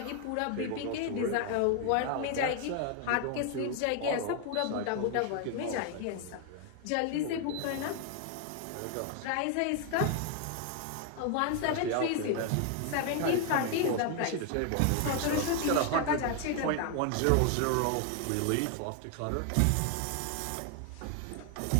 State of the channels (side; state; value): both; different; correlation 0.00